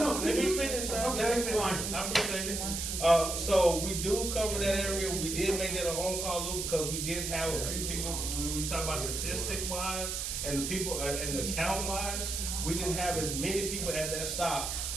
let me finish, sir. Okay, Let me finish. fine. I appreciate it. So we do cover that area. We did make that a long call loop because we did have a few people, when we talk about statistic wise and the people, and the count wise, we didn't have as many people at that stop,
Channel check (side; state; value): right; noise; hiss, 3 dB below the sound